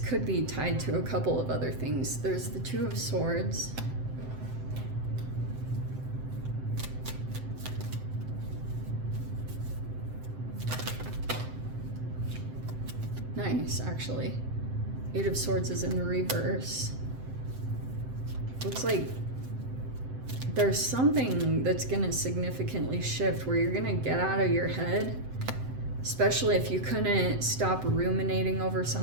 Could be tied to a couple of other things. There's the Two of Swords. Nice, actually. Eight of Swords is in the reverse. Looks like there's something that's gonna significantly shift, where you're gonna get out of your head, especially if you couldn't stop ruminating over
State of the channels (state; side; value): late; left; 7.8 ms